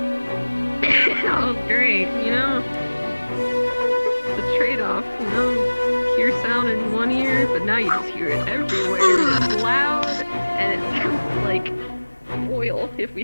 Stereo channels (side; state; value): both; inverted; correlation -1.00